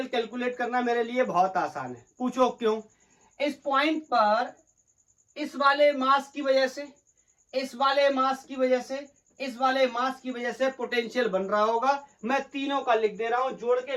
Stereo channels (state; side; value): identical; both; correlation 1.00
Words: कैलकुलेट करना मेरे लिए बहुत आसान है। पूछो क्यों? इस पॉइंट पर इस वाले मास की वजह से, इस वाले मास की वजह से, इस वाले मास की वजह से पोटेंशियल बन रहा होगा। मैं तीनों का लिख दे रहा हूं, जोड़